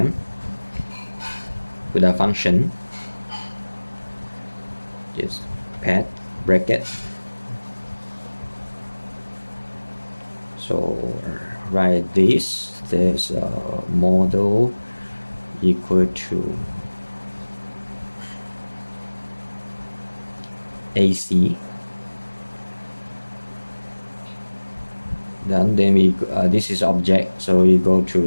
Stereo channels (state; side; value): inverted; both; correlation -1.00